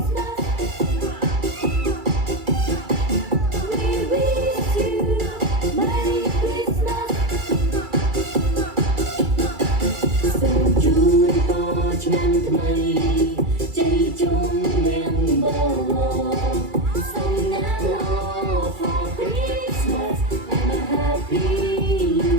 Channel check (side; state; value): left; late; 2.3 ms